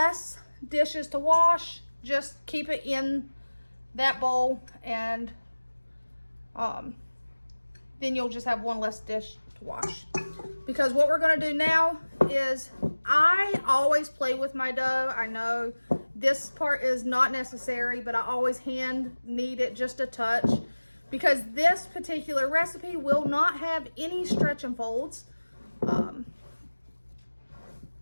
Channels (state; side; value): inverted; both; correlation -1.00